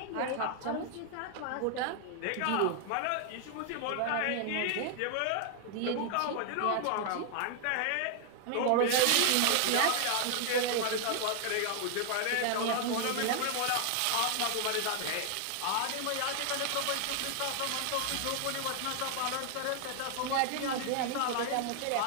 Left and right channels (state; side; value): different; both; correlation 0.00